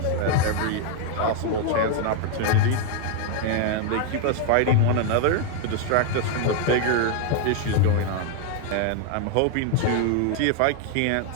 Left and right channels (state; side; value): different; both; correlation 0.00